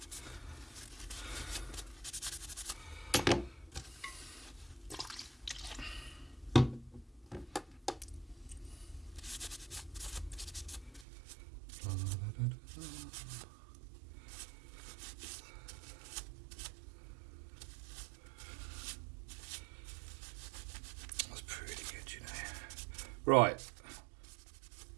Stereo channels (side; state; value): left; drops out; at 11.1 s